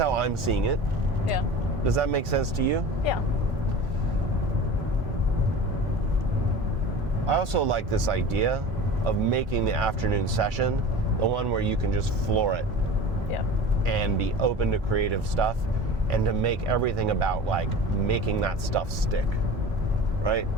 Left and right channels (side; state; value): both; normal; correlation 0.36